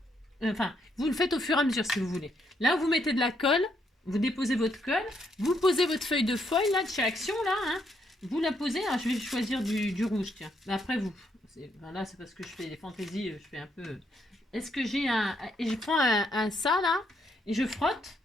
Enfin, vous le faites au fur et à mesure si vous voulez. Là, vous mettez de la colle. Vous déposez votre colle. Vous posez votre feuille de foil, là, de chez Action, là. Hein. Vous la posez. Alors, je vais choisir du rouge, tiens. Mais après, vous. Ben là, c'est parce que je fais des fantaisies. Je fais un peu... Est-ce que j'ai un... Et je prends un ça, là. Et je frotte.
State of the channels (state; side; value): normal; both; correlation 0.74